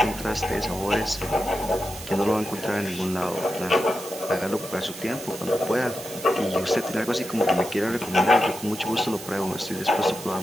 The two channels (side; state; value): right; noise; hiss, 13 dB below the sound